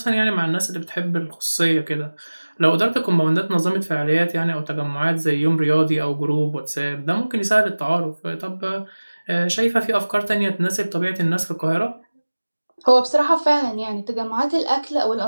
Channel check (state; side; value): inverted; both; correlation -1.00